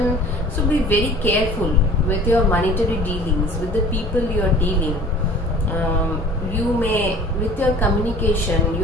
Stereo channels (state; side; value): normal; both; correlation 0.47